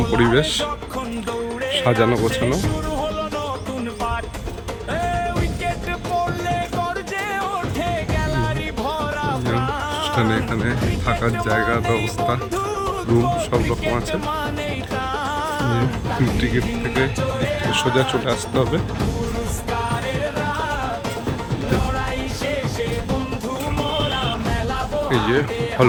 পরিবেশ, সাজানো গোছানো। এখানে থাকার জায়গার ব্যবস্থা, রুম সব রকম আছে। টিকিট থেকে সোজা চলে আসতে হবে। এই যে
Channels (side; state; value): both; identical; correlation 1.00